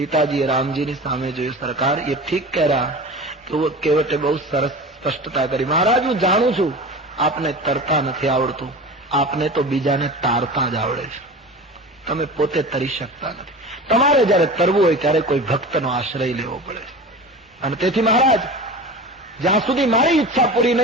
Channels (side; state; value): both; normal; correlation 0.33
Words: રામજીની સામે જોયું, સરકાર એ ઠીક કહ રહ્યા. કેવટે બહુ સરસ સ્પષ્ટતા કરી, મહારાજ હું જાણું છું આપને તરતા નથી આવડતું, આપને તો બીજાને તારતા જ આવડે છે, તમે પોતે તરી શકતા નથી. તમારે જયારે તરવું હોય ત્યારે કોઈ ભક્તનો આશ્રય લેવો પડે છે. અને તેથી મહારાજ જ્યાં સુધી મારી ઈચ્છા પૂરી